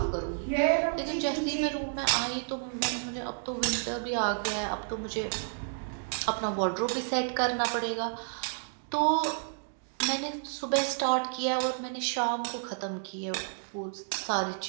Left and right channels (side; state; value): left; silent; digital silence